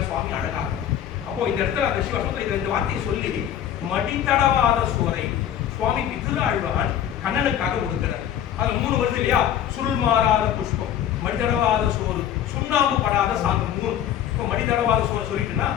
சுவாமி அழகா. அப்போ இந்த இடத்துல அந்த சிவசத்துல இந்த வார்த்தையை சொல்லி மடித்தடவாத சோரை சுவாமி பிதுராழ்வான் கண்ணனுக்காக கொடுக்கிறார். அதுல 3 வருது இல்லையா, சுருள் மாறாத புஷ்பம், மடித்தடவாத சோறு, சுண்ணாம்பு படாத சாந்தம். 3 இப்போ மடித்தடவாத சோறு சொல்லிட்டுன்னா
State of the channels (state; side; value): quieter; right; 10.4 dB